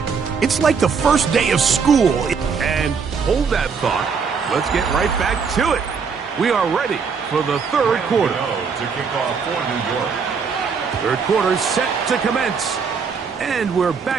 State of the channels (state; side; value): quieter; left; 5.8 dB